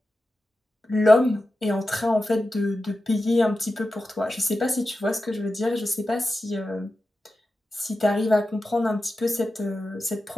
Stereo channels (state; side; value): normal; both; correlation 0.92